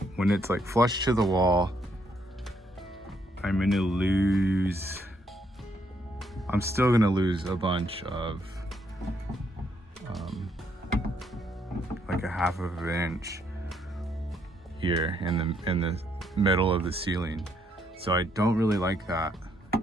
when it's like flush to the wall, I'm still gonna lose a bunch of, like a half of an inch here in the middle of the ceiling. So I don't really like that.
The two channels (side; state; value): both; normal; correlation 0.73